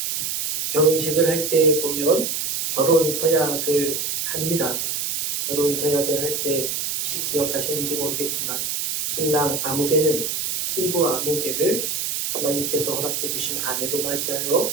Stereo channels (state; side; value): noise; right; hiss, 1 dB below the sound